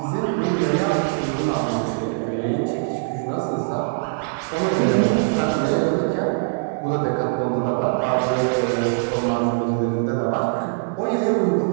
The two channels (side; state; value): left; silent; digital silence